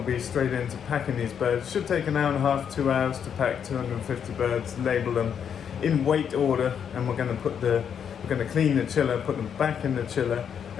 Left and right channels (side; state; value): right; quieter; 7.9 dB